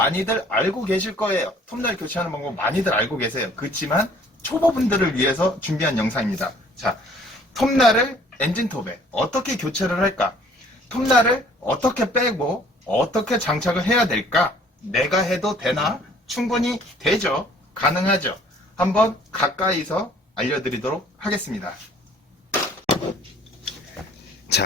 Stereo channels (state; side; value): normal; both; correlation 0.56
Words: 알고 계실 거예요. 톱날 교체하는 방법 많이들 알고 계세요. 그렇지만 초보분들을 위해서 준비한 영상입니다. 자, 톱날을 엔진톱에 어떻게 교체를 할까? 톱날을 어떻게 빼고 어떻게 장착을 해야 될까? 내가 해도 되나? 충분히 되죠. 가능하죠. 한번 가까이서 알려드리도록 하겠습니다.